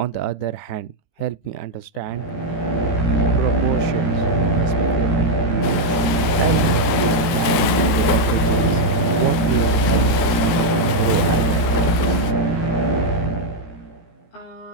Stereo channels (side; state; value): right; late; 18 ms